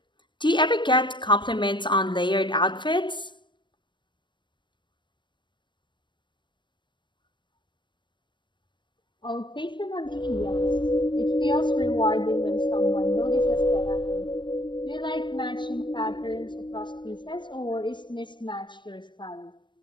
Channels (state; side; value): late; right; 0.22 ms